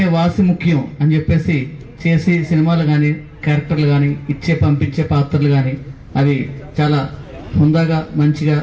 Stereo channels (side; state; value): both; identical; correlation 1.00